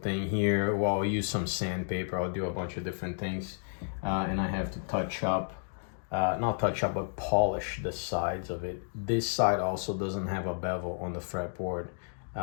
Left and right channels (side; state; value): right; silent; digital silence